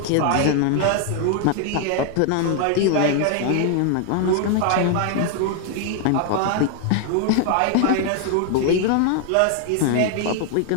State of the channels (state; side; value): different; both; correlation 0.00